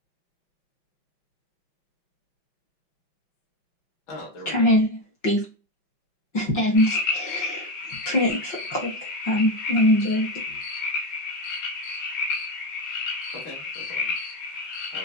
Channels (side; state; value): right; late; 5.6 ms